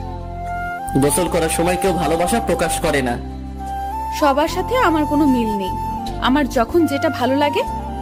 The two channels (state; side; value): identical; both; correlation 1.00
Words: গোসল করার সময় কেউ ভালোবাসা প্রকাশ করে না। সবার সাথে আমার কোনো মিল নেই। আমার যখন যেটা ভালো লাগে